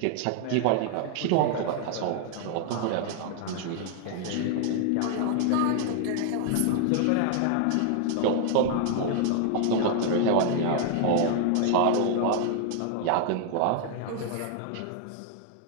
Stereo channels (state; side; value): different; both; correlation 0.00